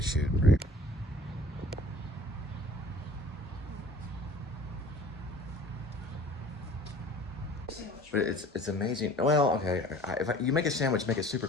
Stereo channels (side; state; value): both; normal; correlation 0.48